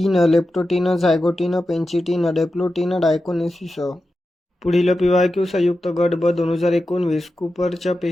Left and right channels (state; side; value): normal; both; correlation 0.91